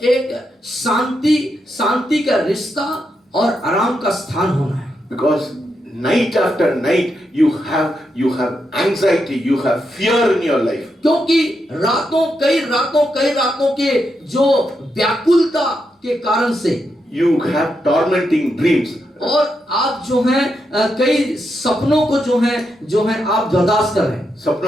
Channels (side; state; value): both; normal; correlation 0.83